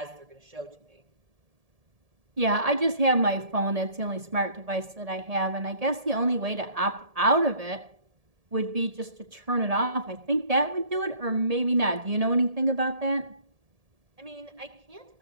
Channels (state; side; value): late; left; 1.7 ms